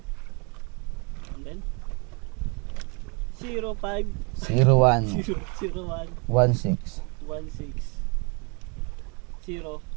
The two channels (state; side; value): quieter; left; 33.2 dB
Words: And then 05 01 01 16. 16 0.